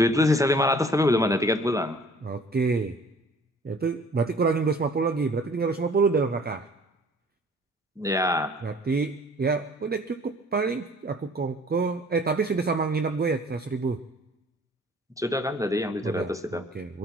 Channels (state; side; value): normal; both; correlation 0.52